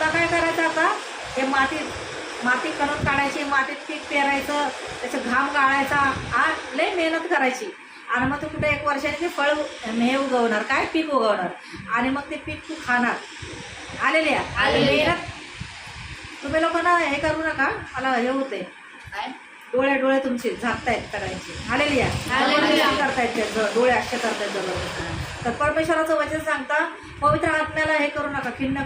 काय करायचं आता? हे माती करून काढायची, मातीत पीक पेरायचं, त्याचं घाम गाळायचा, लय मेहनत करायची. आणि मग तू कुठे 1 वर्षाने ते फळ हे उगवणार, काय पीक उगवणार, आणि मग ते पीक तू खाणार. आलेल्या मेहनत. तुम्ही लोकांना हे करू नका, मला हे होते, डोळे तुमचे झाकतायत सगळ्यांचे. हालेलुया. हालेलुया. करतायत ते डोळे असे करतायत जबरदस्त. तर परमेश्वराचं वचन सांगता, पवित्र आत्म्याला हे करू नका, खिन्न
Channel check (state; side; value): identical; both; correlation 1.00